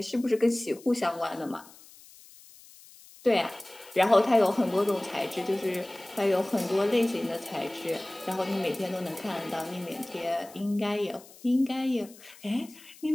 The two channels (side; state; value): left; noise; hiss, 22 dB below the sound